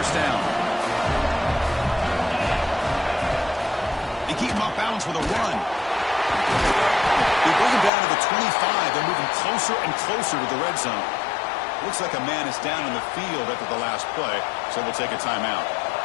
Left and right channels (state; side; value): drops out; right; at 7.9 s